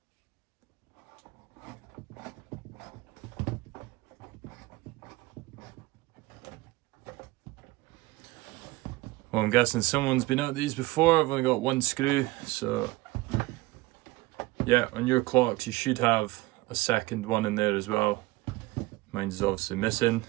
Well, I'm guessing someone's been at these before. I've only got one screw, so yeah, on your clocks you should have a second one in there as well. Mine's obviously missing.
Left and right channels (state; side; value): quieter; left; 20.3 dB